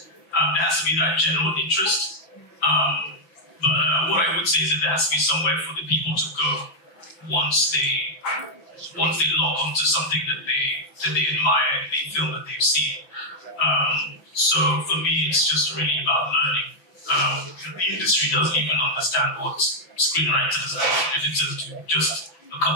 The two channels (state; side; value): late; right; 6.0 ms